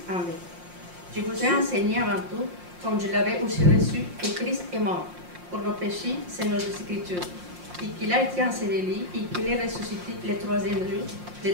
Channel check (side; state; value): left; late; 5.6 ms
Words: en vain. Je vous ai enseigné avant tout, comme je l'avais aussi reçu, que Christ est mort pour nos péchés, c'est nos Écritures, et qu'il a été enseveli et qu'il est ressuscité le